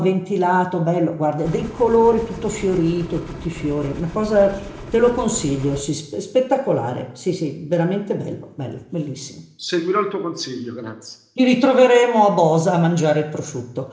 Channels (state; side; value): identical; both; correlation 1.00